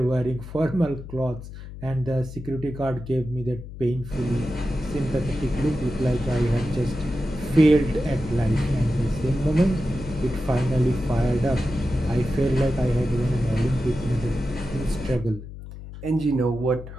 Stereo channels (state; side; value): noise; left; hum, 12 dB below the sound